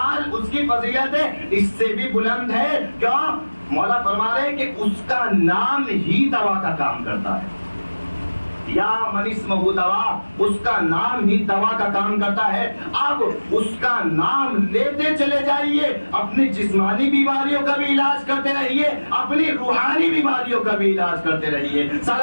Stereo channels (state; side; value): inverted; both; correlation -1.00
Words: اس کی فضیلت اس سے بھی بلند ہے. کیوں؟ مولا فرما رہے ہیں کہ اس کا نام ہی دوا کا کام کرتا ہے. یا من اسمہ دوا، اس کا نام ہی دوا کا کام کرتا ہے. اب اس کا نام لیتے چلے جائیے، اپنی جسمانی بیماریوں کا بھی علاج کرتے رہیے، اپنی روحانی بیماریوں کا بھی علاج کرتے رہیے.